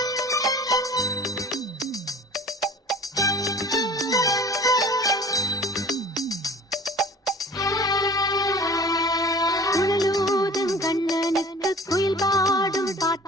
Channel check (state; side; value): normal; both; correlation 0.45